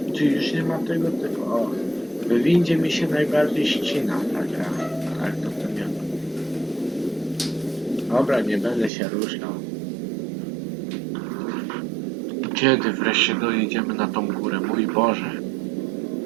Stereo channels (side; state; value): left; drops out; at 8.9 s